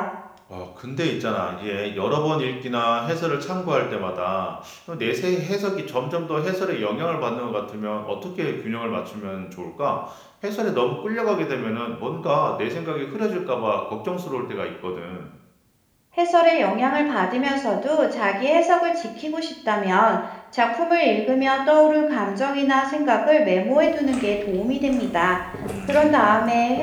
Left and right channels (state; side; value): identical; both; correlation 1.00